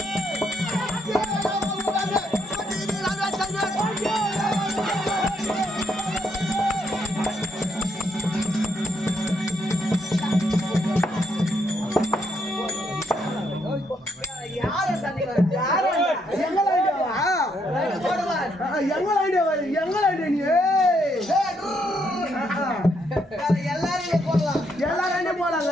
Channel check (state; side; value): normal; both; correlation 0.75